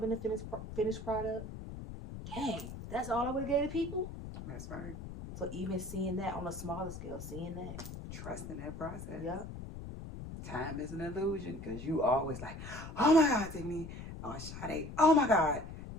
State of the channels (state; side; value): noise; left; rumble, 10 dB below the sound